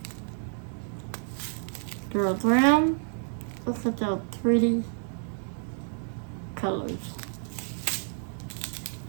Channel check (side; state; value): left; silent; 58 dB below the other